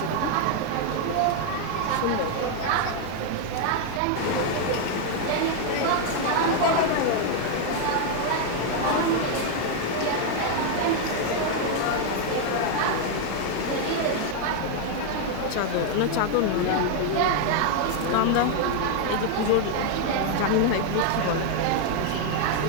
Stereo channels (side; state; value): both; different; correlation 0.00